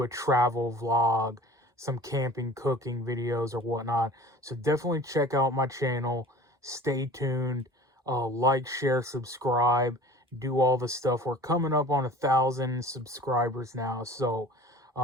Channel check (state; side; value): normal; both; correlation 0.42